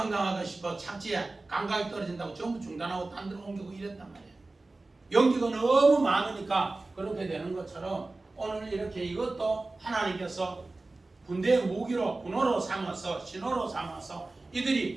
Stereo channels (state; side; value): quieter; left; 3.2 dB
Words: 싶어 착지에 감각이 떨어진다고 전부 중단하고 딴 데로 옮기고 이랬단 말이에요. 연기가 너무 많으니까 그렇게 되는 것처럼 오늘 이렇게 이것도 하나님께서 군대의 무기로 군호로 삼아서 신호로 삼아서